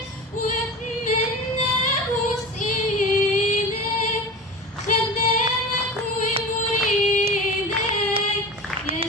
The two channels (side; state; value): both; normal; correlation 0.30